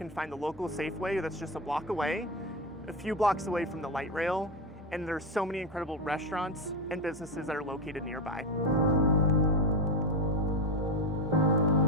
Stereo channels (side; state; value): both; normal; correlation 0.14